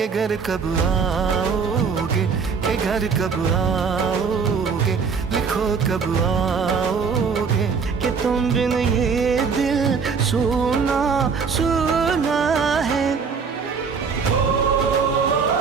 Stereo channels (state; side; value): quieter; left; 5.6 dB